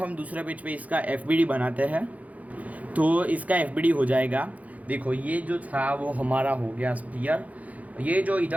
दूसरे पेज पे इसका FBD बनाते हैं। तो इसका FBD हो जाएगा, देखो ये जो था वो हमारा हो गया स्फीयर, ये जो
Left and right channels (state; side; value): late; left; 0.072 ms